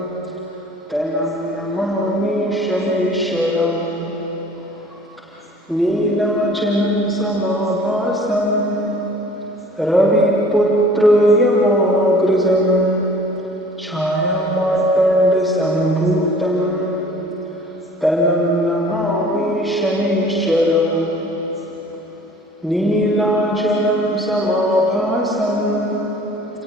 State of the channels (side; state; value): both; normal; correlation 0.50